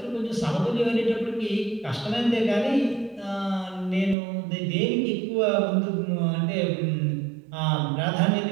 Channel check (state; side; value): drops out; left; at 4.2 s